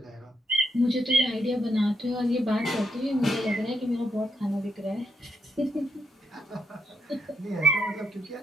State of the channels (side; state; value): both; normal; correlation 0.79